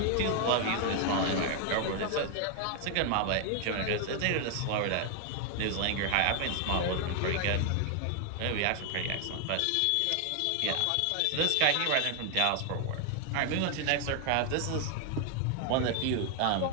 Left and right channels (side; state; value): both; different; correlation 0.00